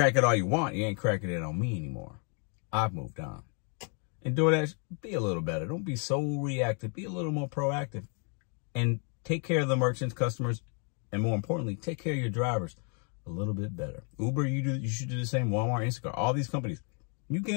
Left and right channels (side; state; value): right; quieter; 39.6 dB